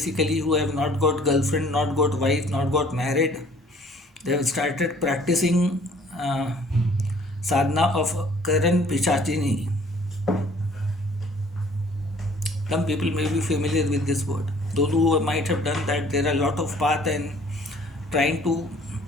who have not got girlfriend, not got wife, not got married. They have started practicing sadhana of Karan Pichachini. Some people may be familiar with this word. Those who might have done that, there are a lot of path, and trying to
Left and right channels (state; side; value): normal; both; correlation 0.56